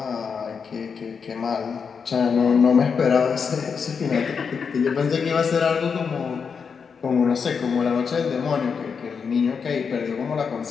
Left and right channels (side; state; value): right; quieter; 6.0 dB